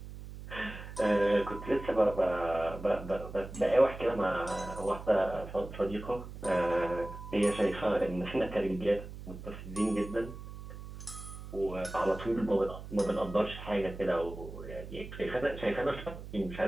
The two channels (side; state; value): right; noise; hum, 12 dB below the sound